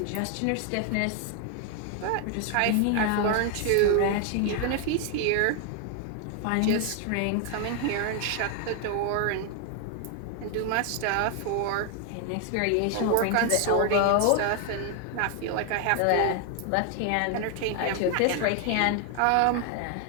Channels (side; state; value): both; different; correlation 0.00